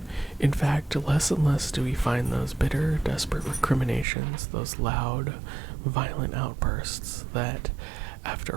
In fact, less and less do we find those bitter, desperate recriminations, those loud, violent outbursts that,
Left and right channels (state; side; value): drops out; left; at 4.0 s